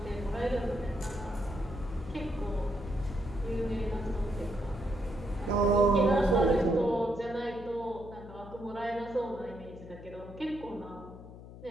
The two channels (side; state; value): left; noise; hum, 15 dB below the sound